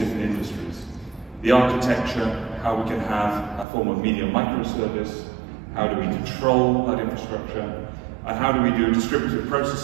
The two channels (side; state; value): left; drops out; at 3.7 s